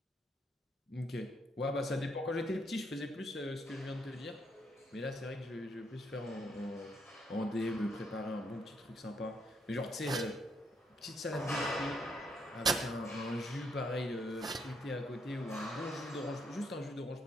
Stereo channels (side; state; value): both; normal; correlation 0.74